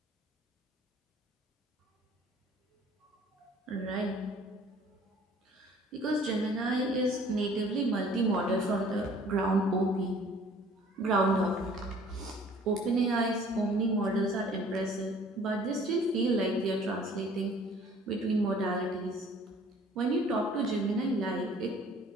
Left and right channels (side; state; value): both; normal; correlation 0.53